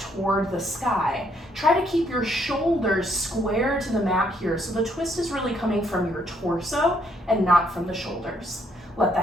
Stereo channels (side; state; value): both; normal; correlation 0.70